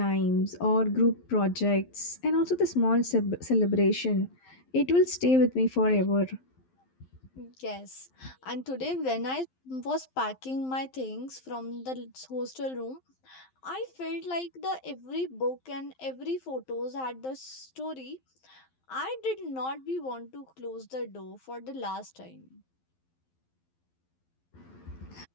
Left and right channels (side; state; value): right; late; 11 ms